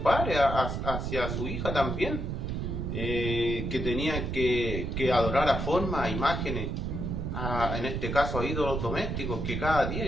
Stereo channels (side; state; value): right; noise; rumble, 2 dB below the sound